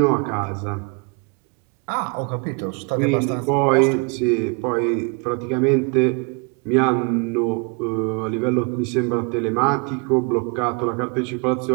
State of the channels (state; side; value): quieter; left; 34.3 dB